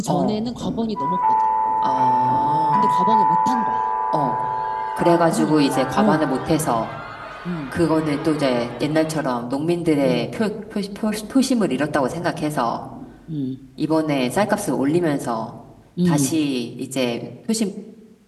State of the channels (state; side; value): identical; both; correlation 1.00